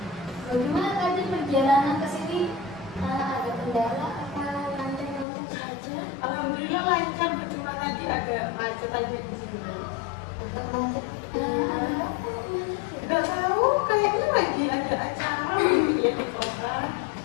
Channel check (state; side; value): drops out; right; at 5.2 s